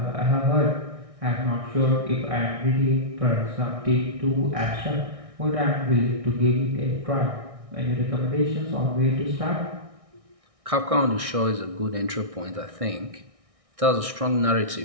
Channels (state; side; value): late; left; 1.6 ms